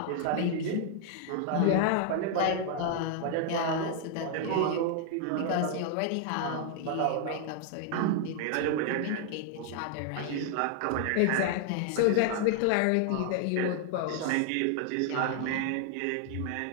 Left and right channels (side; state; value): both; different; correlation 0.00